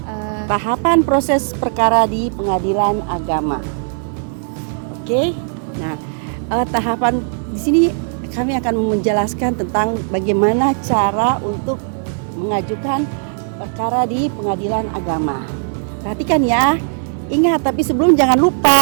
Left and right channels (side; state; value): left; silent; digital silence